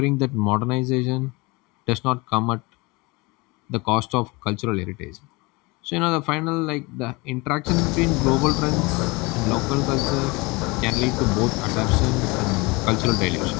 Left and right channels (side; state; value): right; quieter; 25.2 dB